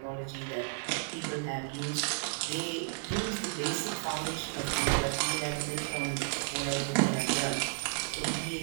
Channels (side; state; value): left; silent; 56 dB below the other